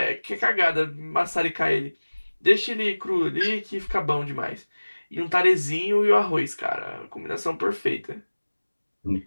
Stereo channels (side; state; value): both; inverted; correlation -1.00